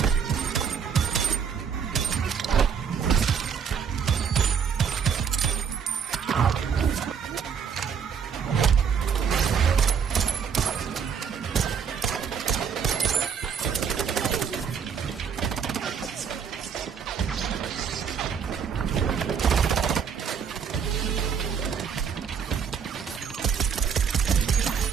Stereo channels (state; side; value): quieter; left; 7.0 dB